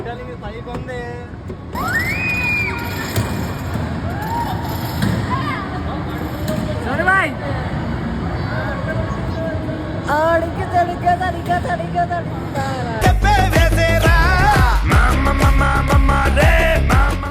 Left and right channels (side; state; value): both; identical; correlation 1.00